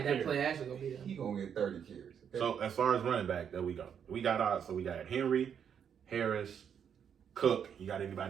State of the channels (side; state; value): left; quieter; 8.0 dB